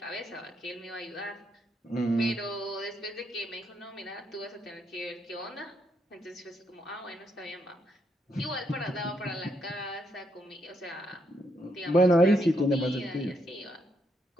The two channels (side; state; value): both; normal; correlation 0.76